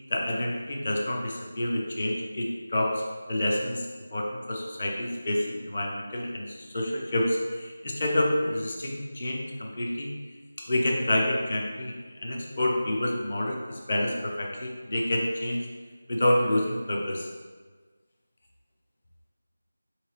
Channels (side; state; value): both; inverted; correlation -0.94